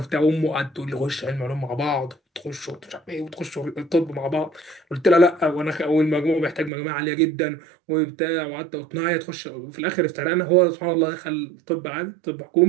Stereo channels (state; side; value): drops out; left; at 6.7 s